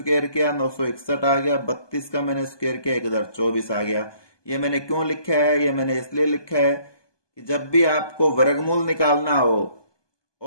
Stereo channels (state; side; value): late; right; 1.2 ms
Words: किया, 961 आ गया। 32 का मैंने स्क्वायर किया, 1024 आ गया। ये मैंने क्यों लिखा है, ये मैंने इसलिए लिखा है कि जब भी आपको वर्गमूल निकालना हो